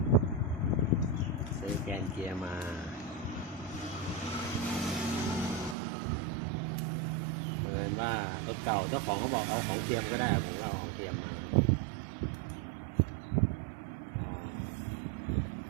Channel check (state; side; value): drops out; left; at 5.8 s